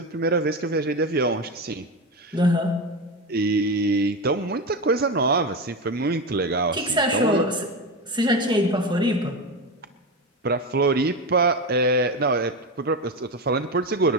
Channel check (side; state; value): both; normal; correlation 0.18